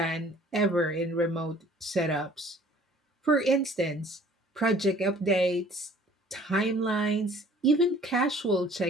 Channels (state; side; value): normal; both; correlation 0.53